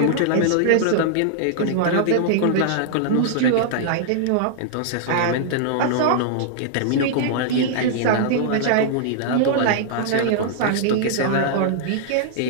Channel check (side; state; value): both; different; correlation -0.01